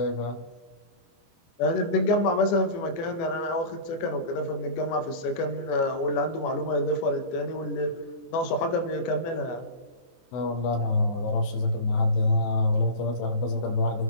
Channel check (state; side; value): late; right; 24 ms